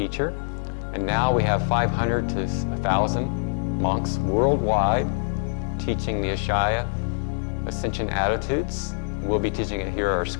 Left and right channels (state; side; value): silent; right; digital silence